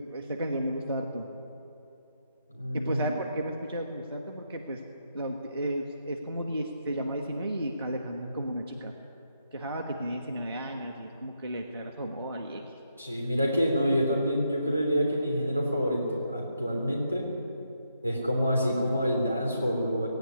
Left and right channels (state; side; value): inverted; both; correlation -0.79